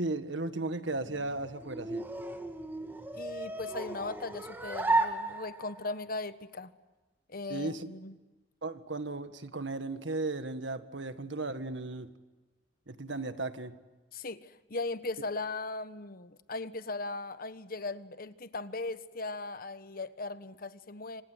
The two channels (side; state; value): both; normal; correlation 0.19